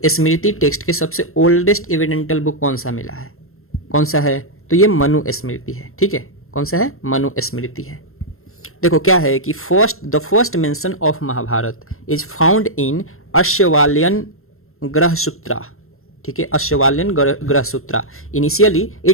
स्मृति टेक्स्ट के सबसे ओल्डेस्ट एविडेंटल बुक कौन सा मिला है, कौन सा है, तो ये मनु स्मृति है, ठीक है। कौन सा है, मनु स्मृति है। देखो क्या है कि the first mention of Mahabharat is found in Ashvalayan Grihasutra, ठीक है, Ashvalayan Grihasutra. Initially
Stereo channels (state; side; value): late; right; 0.62 ms